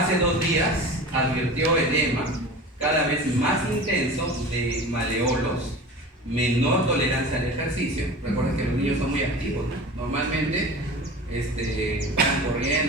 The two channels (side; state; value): both; normal; correlation 0.35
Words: 2 días advirtió edema cada vez más intenso de maleolos, menor tolerancia al ejercicio. Recuerden que los niños son muy activos, ¿no? Normalmente van